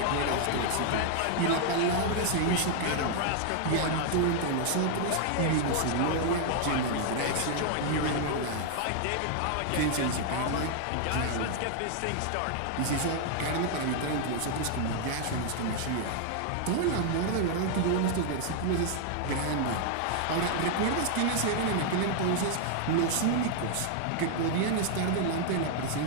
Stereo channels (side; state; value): both; different; correlation 0.00